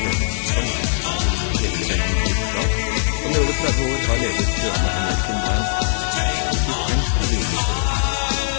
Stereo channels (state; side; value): silent; right; 62 dB below the other